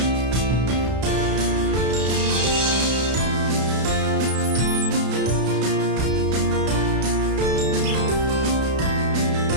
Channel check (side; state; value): left; late; 32 ms